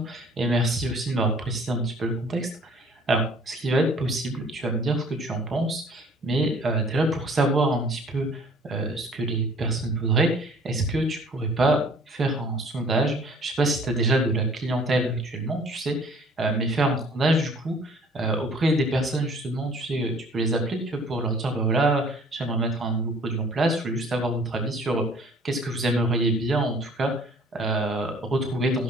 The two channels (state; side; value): normal; both; correlation 0.54